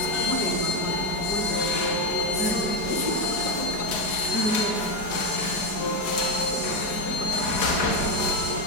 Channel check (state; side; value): late; right; 4.8 ms